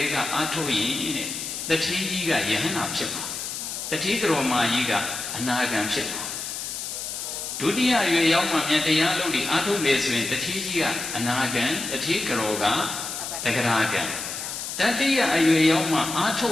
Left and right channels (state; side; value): noise; left; hiss, 6 dB below the sound